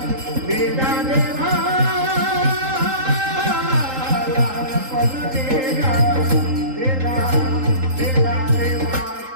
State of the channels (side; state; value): left; late; 3.8 ms